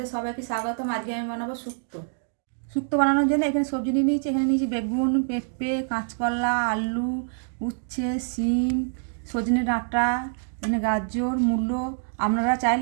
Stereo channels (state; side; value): silent; left; digital silence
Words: সবাইকে স্বাগতম। আজকে আমি বানাবো শুক্তো। শুক্তো বানানোর জন্য এখানে সবজি নিয়ে নিয়েছি। এখানে নিয়েছি বেগুন, পেঁপে, কাঁচকলা, আলু, উচ্ছে, শিম, সজনে ডাঁটা, এখানে গাজর, মূলো। আপনারা